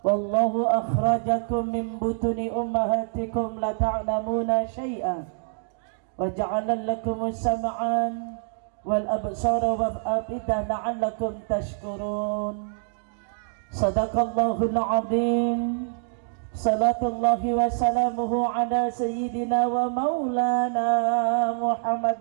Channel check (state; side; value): silent; left; digital silence